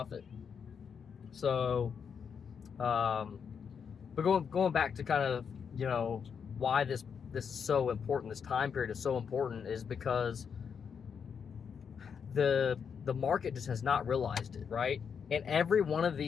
So, but going back to kind of, why this is so important, this time period is so important, is because the market just has not realized it, right? And every one of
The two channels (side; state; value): right; quieter; 6.8 dB